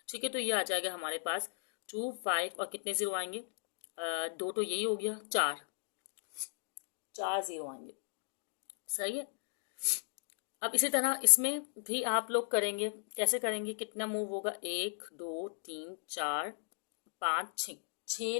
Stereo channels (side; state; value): right; silent; digital silence